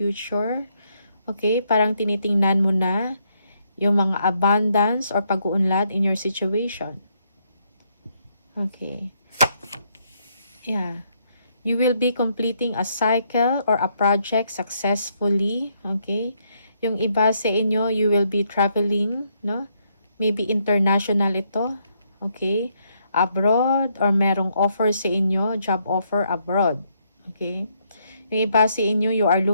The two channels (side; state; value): both; inverted; correlation -0.74